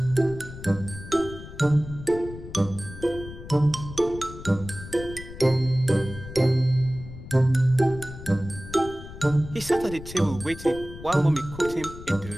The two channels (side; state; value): left; noise; rumble, 13 dB below the sound